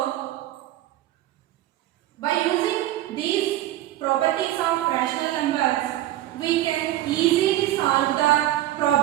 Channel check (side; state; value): left; quieter; 14.3 dB